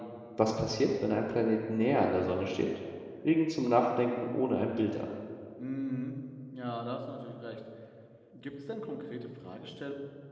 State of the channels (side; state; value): both; identical; correlation 1.00